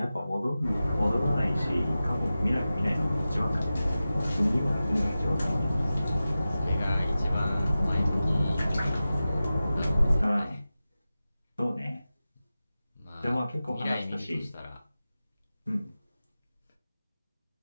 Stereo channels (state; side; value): inverted; both; correlation -0.94